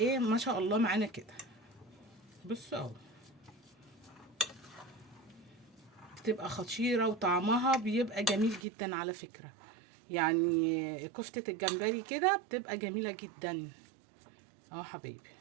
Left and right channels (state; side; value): drops out; left; at 8.7 s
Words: ما شاء الله معانا كده. بصوا اهو بتبقى خطيره وطعمها بيبقى جميل جدا على فكره. يعني كفته الجمبري كده بتبقى جميله جدا. اهو حبايبي.